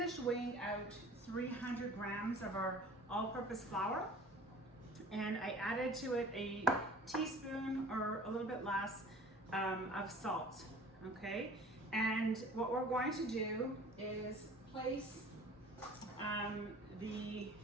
weighing out 300 grams of our all-purpose flour, and I added to it a teaspoon or a little bit less of salt, okay? And what we're going to do is place the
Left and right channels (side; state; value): both; normal; correlation 0.45